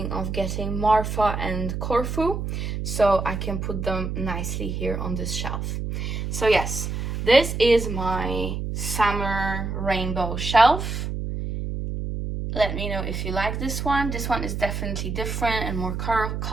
of getting Marfa and Corfu, so I can put them nicely here on this shelf. So yes, this is my summer rainbow shelf. Let me know if you like this one. This one is definitely different and more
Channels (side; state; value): right; noise; hum, 3 dB below the sound